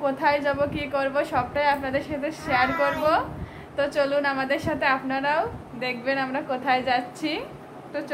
কোথায় যাব কি করব সবটাই আপনাদের সাথে শেয়ার করব। তো চলুন আমাদের সাথে, আপনারাও দেখবেন আমরা কোথায় যাচ্ছি। তো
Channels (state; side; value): identical; both; correlation 1.00